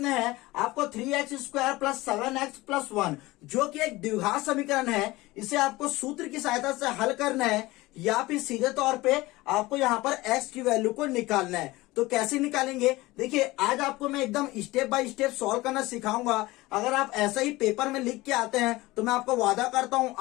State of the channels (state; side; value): quieter; right; 19.9 dB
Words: है आपको 3x² + 7x + 1 जो कि एक द्विघात समीकरण है, इसे आपको सूत्र की सहायता से हल करना है या फिर सीधे तौर पे आपको यहाँ पर x की वैल्यू को निकालना है। तो कैसे निकालेंगे, देखिए आज आपको मैं एकदम स्टेप बाय स्टेप सॉल्व करना सिखाऊंगा। अगर आप ऐसा ही पेपर में लिख के आते हैं तो मैं आपको वादा करता हूं